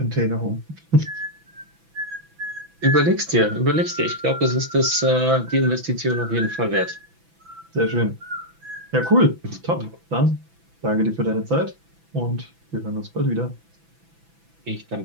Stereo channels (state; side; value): late; left; 6.0 ms